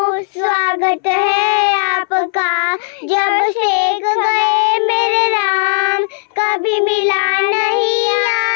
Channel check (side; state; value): right; silent; 63 dB below the other